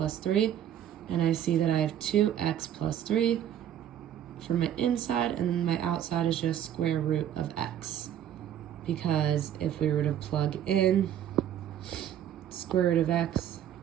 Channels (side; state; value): left; quieter; 10.5 dB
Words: 3, and I see that I have 2x plus 3 for my inside, and my outside is just square root of x. Because if we were to plug in square root of x,